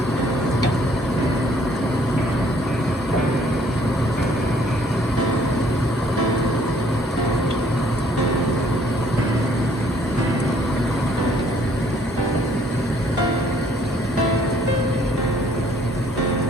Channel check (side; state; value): both; normal; correlation 0.62